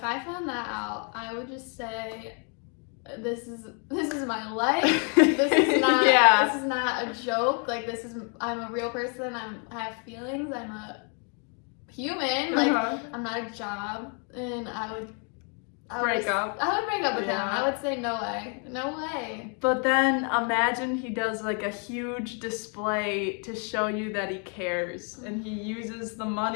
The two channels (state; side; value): quieter; right; 39.1 dB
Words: I found that out, I would just say, this is my life. This is not this is not a joke. Like, I'm a real person. I have feelings. I'm a human. Like, I'm not a job. And I would break up with him. I would say no way. But then imagine he does like a huge display to show you that he cares, and he uses the